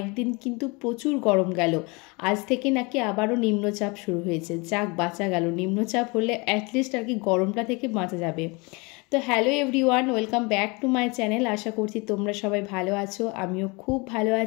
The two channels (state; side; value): quieter; right; 27.9 dB